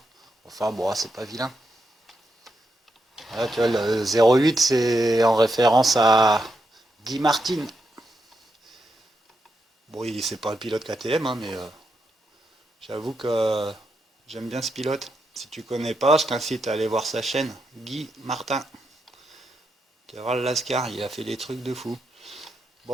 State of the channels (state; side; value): normal; both; correlation 0.83